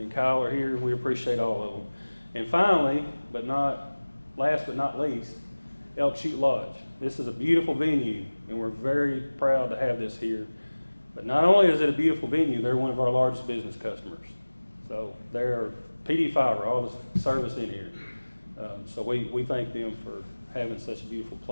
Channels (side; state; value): both; inverted; correlation -1.00